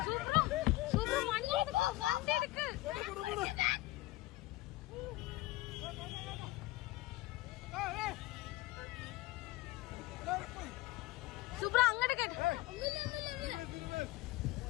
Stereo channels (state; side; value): quieter; right; 18.2 dB